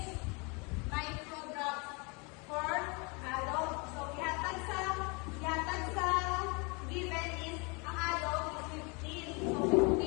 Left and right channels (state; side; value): quieter; right; 30.7 dB